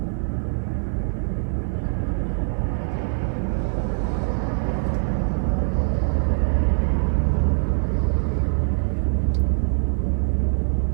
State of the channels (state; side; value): silent; left; 63 dB below the other